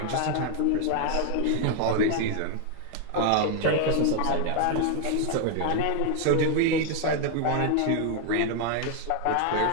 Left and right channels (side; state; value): both; different; correlation 0.00